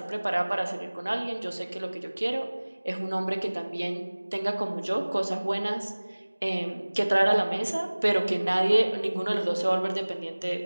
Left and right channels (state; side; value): inverted; both; correlation -1.00